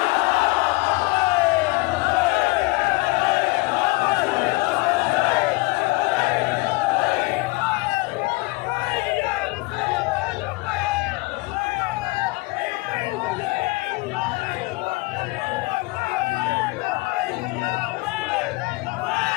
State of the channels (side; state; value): right; quieter; 24.1 dB